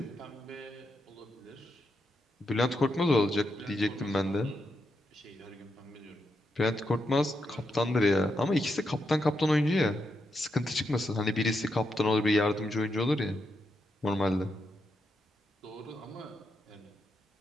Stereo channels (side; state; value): both; normal; correlation 0.83